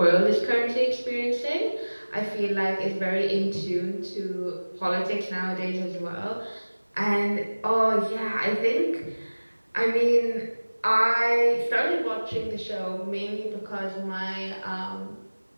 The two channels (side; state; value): both; inverted; correlation -1.00